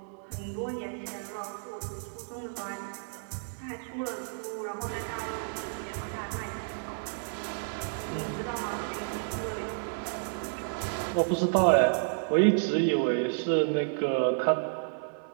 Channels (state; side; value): silent; left; 57 dB below the other